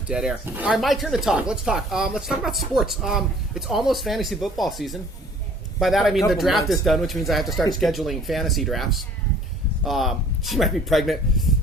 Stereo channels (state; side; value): normal; both; correlation 0.53